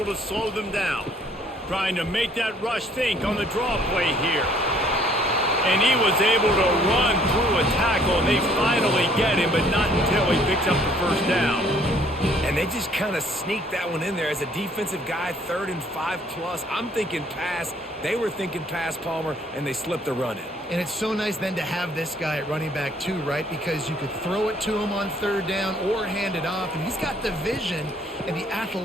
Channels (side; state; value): both; normal; correlation 0.61